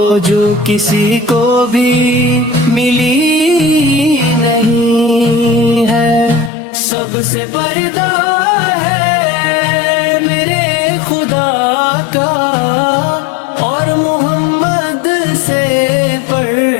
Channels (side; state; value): right; drops out; at 6.5 s